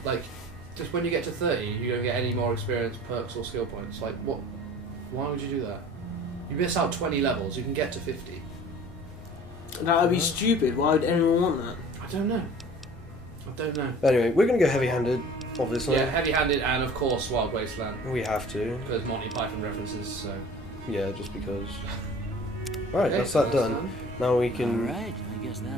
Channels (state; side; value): normal; both; correlation 0.45